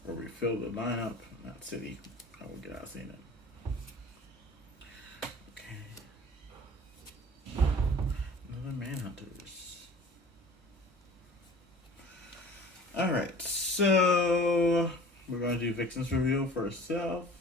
Or refill the lineup. Not city. I will get out of seeing it. Okay. Another Manhunters. Alright. So we're going to do Vixen's reveal for herself.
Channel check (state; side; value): normal; both; correlation 0.44